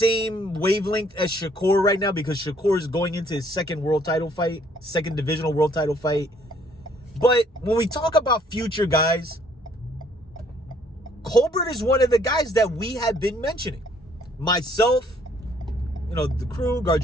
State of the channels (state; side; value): normal; both; correlation 0.63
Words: wavelength as Shakur right now, because Shakur is going into his second divisional world title fight. But when we talk about future guys, Colbert is one of the guys that we have been mentioning. Myself, the crew, Guard